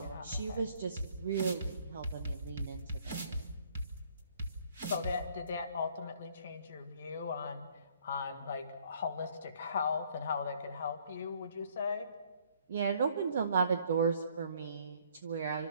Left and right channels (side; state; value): both; inverted; correlation -0.62